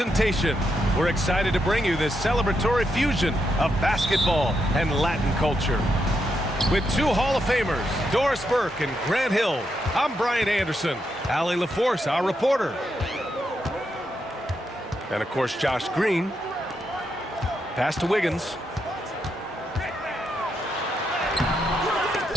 We're excited to bring you this celebratory fusion of basketball and Latin culture. With two Hall of Famers, Doris Burke and Grant Hill, I'm Brian Anderson, Allie LaForce, our reporter. And of course, Josh Green. Pass to Wiggins.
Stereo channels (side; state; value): both; normal; correlation 0.82